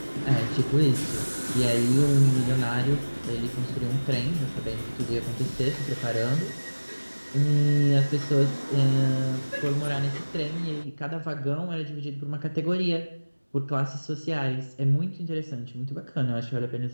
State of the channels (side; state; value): both; inverted; correlation -1.00